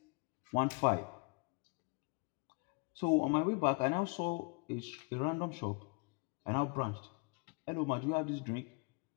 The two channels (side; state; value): right; quieter; 32.5 dB